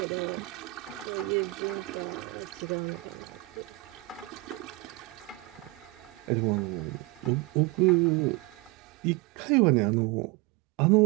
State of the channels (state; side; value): quieter; left; 23.1 dB